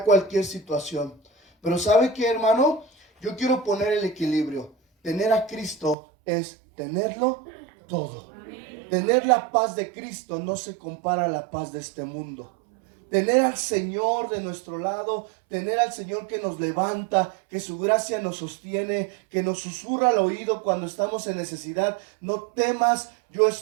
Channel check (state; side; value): drops out; left; at 6.0 s